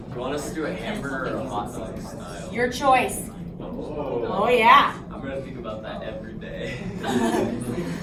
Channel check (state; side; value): identical; both; correlation 1.00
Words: You want us to do a hamburger or a hot dog style? Your choice. Oh. Oh, yeah. I'm going to think about that every day.